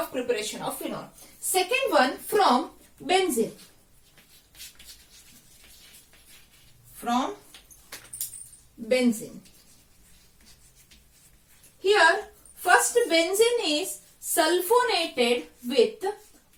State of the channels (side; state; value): both; identical; correlation 1.00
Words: preparation of phenol. Second one, from benzene. Here, first benzene is sulfonated with